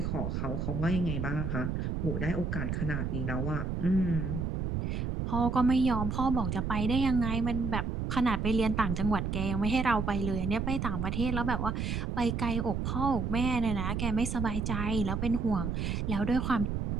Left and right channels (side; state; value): right; noise; rumble, 1 dB below the sound